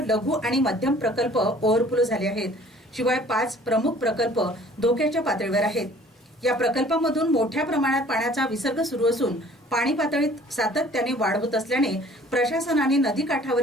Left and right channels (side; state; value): both; normal; correlation 0.52